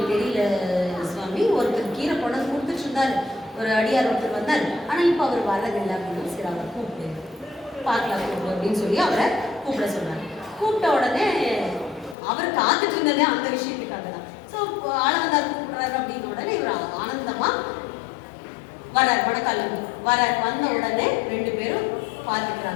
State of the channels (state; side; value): drops out; right; at 12.2 s